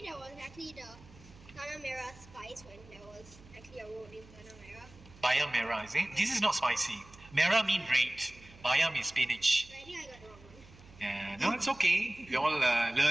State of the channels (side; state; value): right; noise; hum, 22 dB below the sound